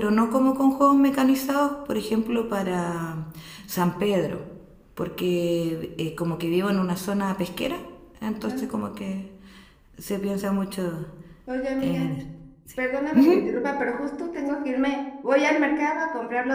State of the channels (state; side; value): identical; both; correlation 1.00